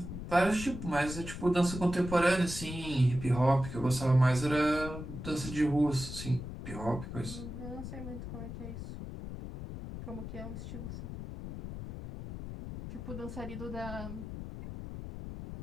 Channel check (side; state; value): left; noise; rumble, 9 dB below the sound